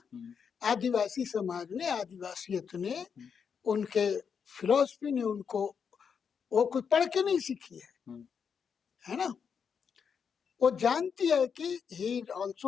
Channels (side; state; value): right; quieter; 6.7 dB